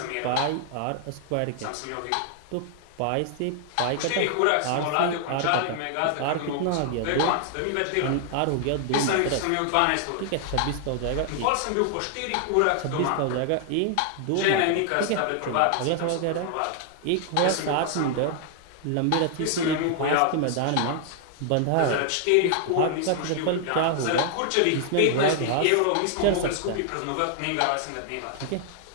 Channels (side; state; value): both; different; correlation 0.00